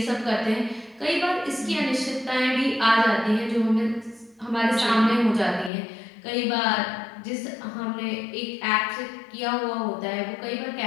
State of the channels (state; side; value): drops out; right; at 5.7 s